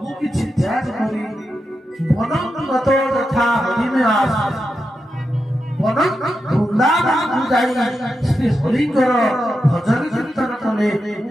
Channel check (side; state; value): both; normal; correlation 0.88